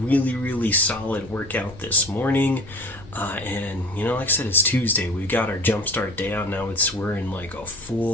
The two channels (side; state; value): left; noise; rumble, 19 dB below the sound